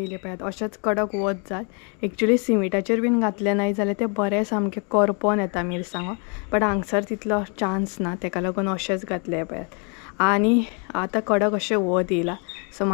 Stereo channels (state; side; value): quieter; right; 37.2 dB